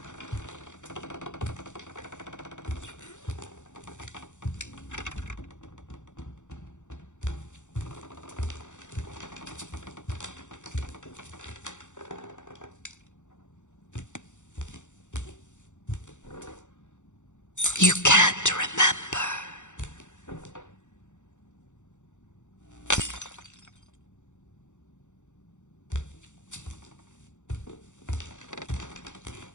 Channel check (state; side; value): late; right; 0.85 ms